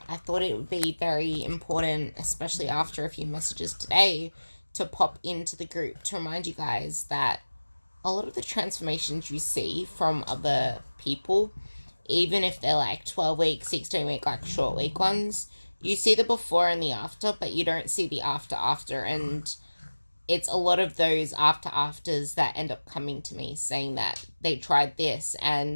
I thought it would be very important, especially after a few messages today, to pop into the group to remind you guys that a lot of the transformations you see from other people, even if they're like 12 week, 16-week, like short week ones, you see the before and the after, but you don't see the after. And it's a lot of those afters that end up coming to me saying that they tried this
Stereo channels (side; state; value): both; inverted; correlation -1.00